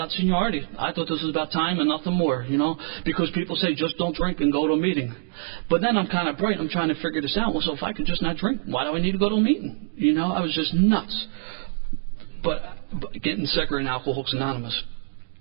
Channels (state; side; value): silent; left; digital silence